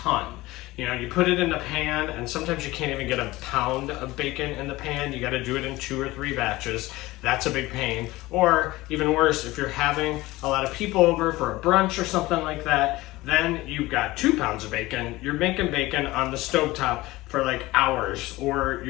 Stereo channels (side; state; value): right; quieter; 19.2 dB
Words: You know, you put it in the pan, and sometimes you can't even get a pound of bacon in the pan. You got to do it in 2 or 3 batches. That's a big pain. Or even worse, if you're having a lot of people over for a brunch or something like that, then you've got 2 pounds of bacon. You're making bacon on the stovetop for like hours, or